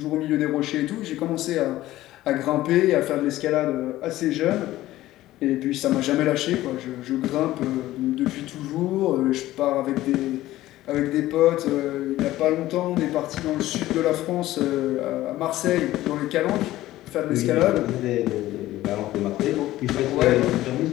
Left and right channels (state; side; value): quieter; right; 15.6 dB